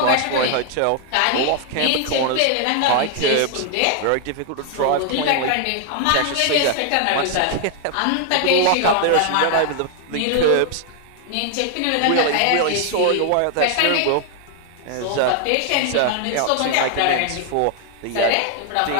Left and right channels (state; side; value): different; both; correlation 0.00